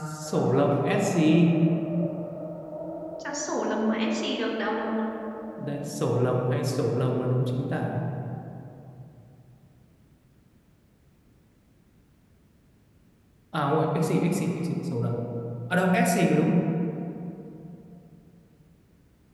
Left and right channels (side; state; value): both; identical; correlation 1.00